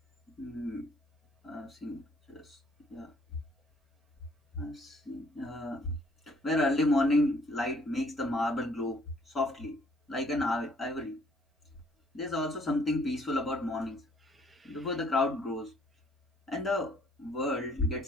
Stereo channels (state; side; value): normal; both; correlation 0.62